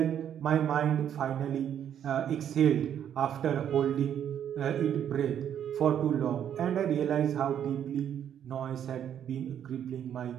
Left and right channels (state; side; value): quieter; left; 9.5 dB